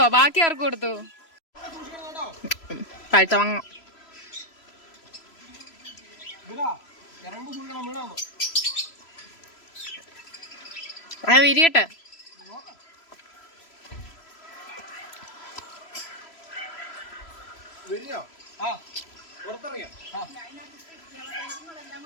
ബാക്കി ആർക്ക് കൊടുത്തു? പഴുത്ത വാങ്ങ. വിരിയട്ടെ.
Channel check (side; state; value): right; late; 3.0 ms